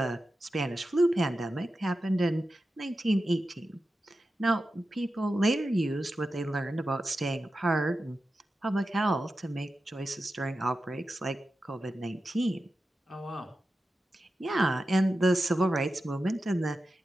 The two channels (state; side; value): normal; both; correlation 0.92